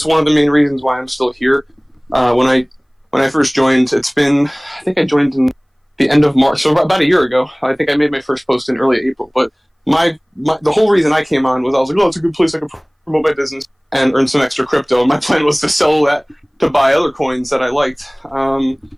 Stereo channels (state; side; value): identical; both; correlation 1.00